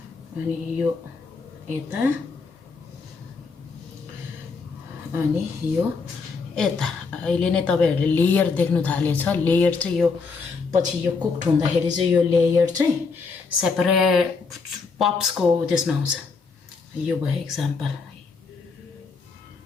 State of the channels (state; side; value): quieter; right; 4.7 dB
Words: अनि यो यता अनि यो यता अहिले नै तपाईहरुले लेयर देख्नु थालेछ लेयर चाहिँ यो पछि यो कुक्ड हुँदाखेरि चाहिँ यो लेयर चाहिँ सेपरेट पप्सको त्यसमा आउँछ यो भयो एक्जाम्पल